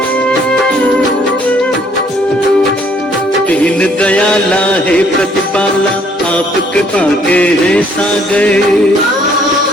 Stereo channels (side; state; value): both; normal; correlation 0.64